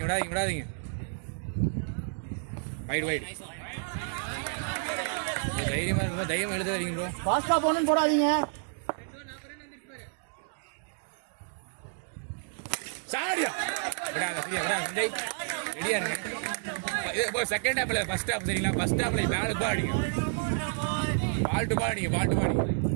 வைட் தைரியமா இருக்கும். தைரியமா எழுத வரீங்க ப்ரோ. ஃபாஸ்டா போகணும்னு போடாதீங்க. சாடியா விடாத, சரியா? விடாத, ரெடியா இருங்க. இது செகண்ட் ஹாப்ல, ஃபர்ஸ்ட் ஹாப் சரிங்களா? ஃபர்ஸ்ட் ஹாப்ல பேலுக்கு பால் அடிங்க, பால் டு பால் அடிங்க.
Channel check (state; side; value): silent; left; digital silence